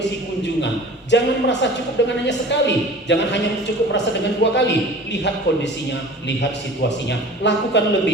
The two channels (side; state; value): both; normal; correlation 0.42